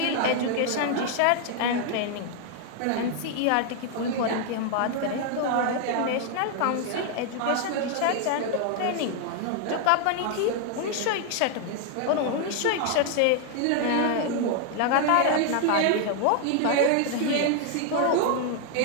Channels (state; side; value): different; both; correlation 0.00